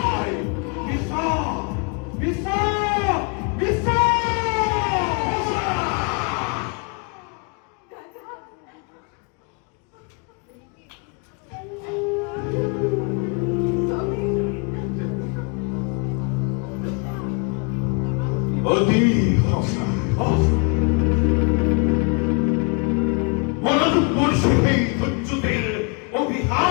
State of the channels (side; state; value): right; quieter; 34.6 dB